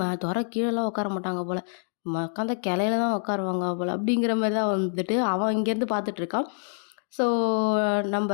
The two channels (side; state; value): right; silent; digital silence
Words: தொர கீழெல்லாம் உட்கார மாட்டாங்க போல், உட்காந்த கிளையில தான் உட்காருவாங்க போல் அப்படிங்கிற மாதிரி தான் வந்துட்டு அவன் இங்கேருந்து பார்த்துட்ருக்கான். ஸோ நம்ம